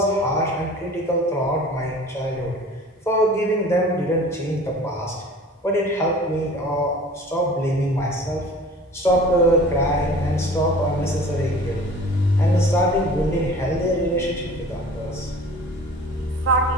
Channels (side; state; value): both; normal; correlation 0.44